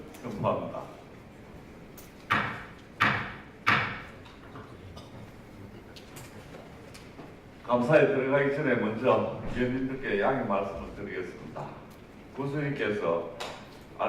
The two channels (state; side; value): identical; both; correlation 1.00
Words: 선포합니다. 감사에 들어가기 전에 먼저 위원님들께 양해 말씀을 드리겠습니다. 군수님께서